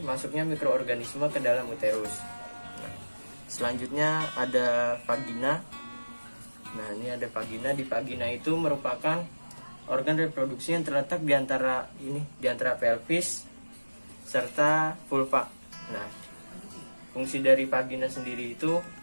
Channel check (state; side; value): inverted; both; correlation -1.00